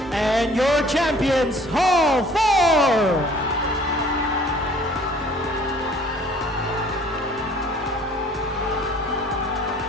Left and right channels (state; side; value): normal; both; correlation 0.53